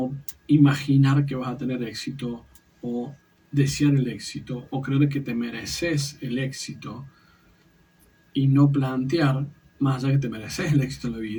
imaginar que vas a tener éxito, o desear el éxito, o creer que te mereces el éxito, y no plantear, más allá que te mereces el éxito en la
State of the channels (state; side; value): identical; both; correlation 1.00